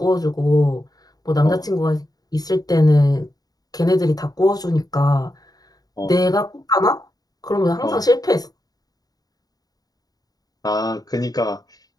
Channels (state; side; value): late; right; 0.18 ms